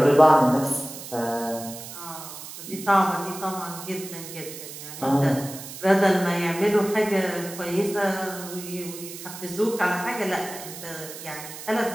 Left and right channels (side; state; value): right; noise; hiss, 12 dB below the sound